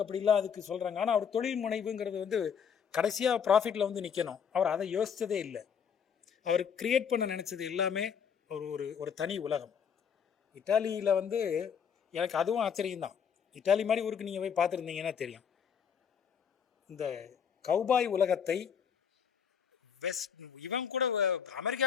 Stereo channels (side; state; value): right; quieter; 7.3 dB